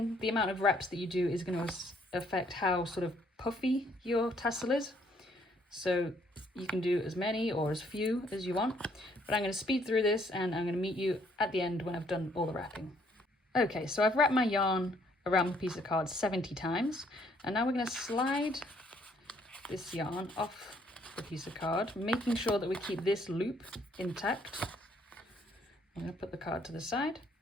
the amount of wraps that you do is going to affect how sort of puffy your tassel is. So you can do as many or as few as you want. But I'm going to speed through this and I'm going to meet you at the end when I've done all the wrapping. Okay, so I've wrapped my yarn around the piece of card 70 times. And now we're going to slide this yarn off the piece of card, making sure that we keep this loop intact. I'm going to put the card to the side.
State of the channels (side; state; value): both; normal; correlation 0.66